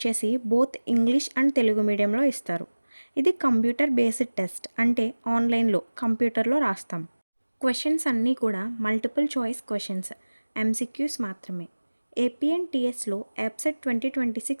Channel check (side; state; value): both; inverted; correlation -1.00